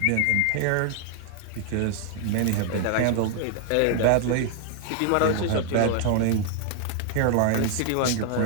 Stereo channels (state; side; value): different; both; correlation 0.00